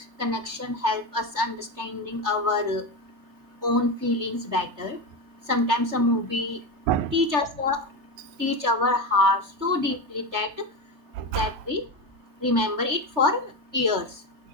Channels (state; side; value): late; left; 3.3 ms